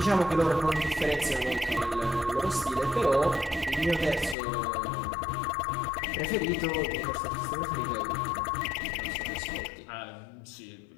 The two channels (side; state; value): right; drops out; at 4.4 s